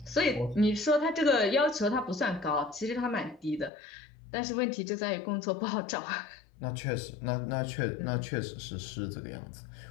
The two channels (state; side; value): drops out; right; at 3.7 s